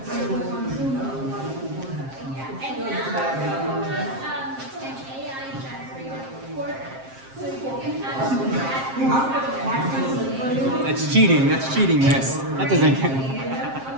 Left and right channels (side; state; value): left; late; 7.5 ms